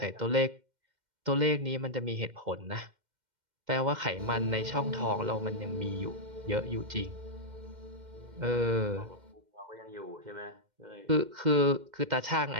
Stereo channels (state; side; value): late; left; 2.1 ms